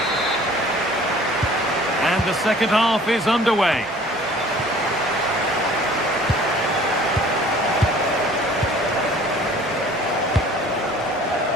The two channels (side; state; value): both; normal; correlation 0.50